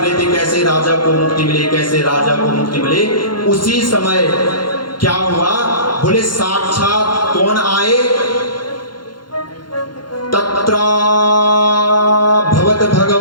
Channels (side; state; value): right; late; 0.71 ms